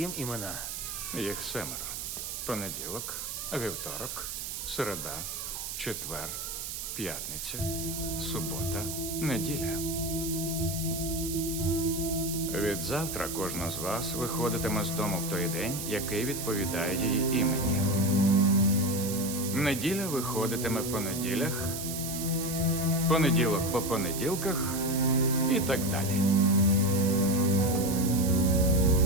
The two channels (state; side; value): noise; right; hiss, 6 dB below the sound